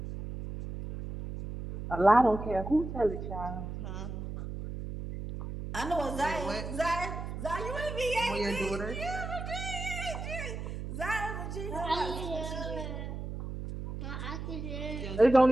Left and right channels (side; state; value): right; noise; hum, 6 dB below the sound